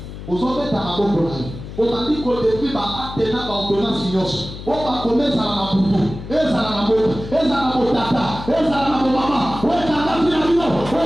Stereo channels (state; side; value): noise; left; hum, 11 dB below the sound